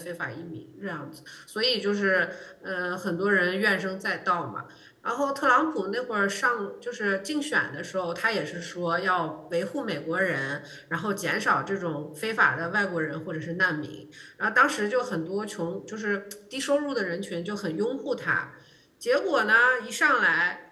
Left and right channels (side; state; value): both; identical; correlation 1.00